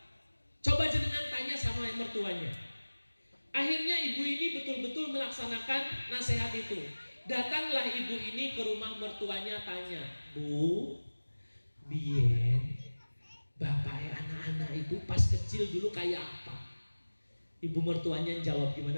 Coba jenengan tanya sama mertuanya. Akhirnya ibu ini betul-betul melaksanakan nasihat itu. Datanglah ibu ini ke rumah mertuanya, tanya, Bu, biyen bapaknya anak-anak itu pas kecil dulu kayak apa? Ibu mertuanya jawab, gimana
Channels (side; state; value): both; inverted; correlation -1.00